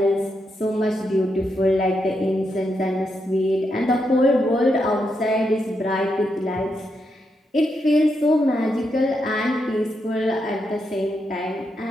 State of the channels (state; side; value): normal; both; correlation 0.82